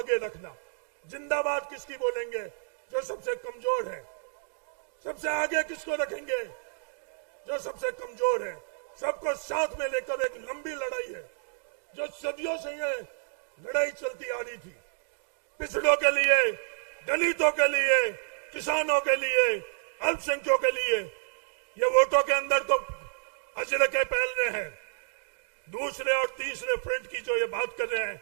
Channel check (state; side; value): silent; left; digital silence